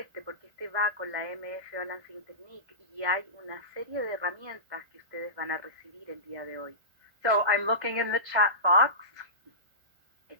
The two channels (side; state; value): left; late; 1.5 ms